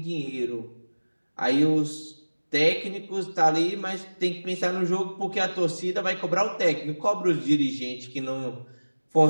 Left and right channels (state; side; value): inverted; both; correlation -1.00